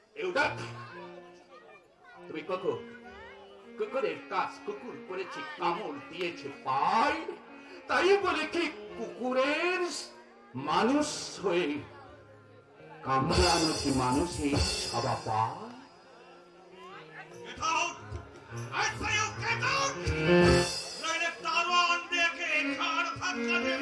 তুমি কুকুরের কাজ কুকুর করেছে, কামড় দিয়েছে পায়, তাই বলে কি কুকুরের মানুষ হয়ে কামড়ানো কি মানুষের স্বভাব পায়? Get out! I say you get out! নইলে দারোয়ান দেখে ঘাড় ধাক্কা দিয়ে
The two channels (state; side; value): identical; both; correlation 1.00